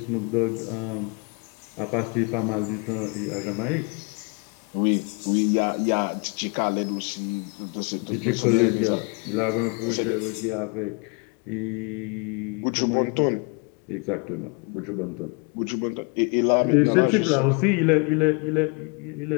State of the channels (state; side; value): quieter; right; 32.8 dB